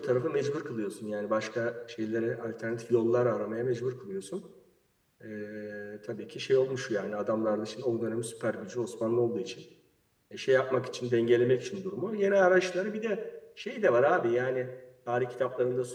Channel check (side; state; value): both; identical; correlation 1.00